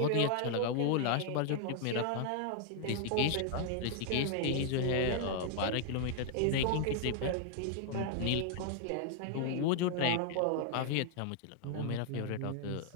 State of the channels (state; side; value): different; both; correlation -0.01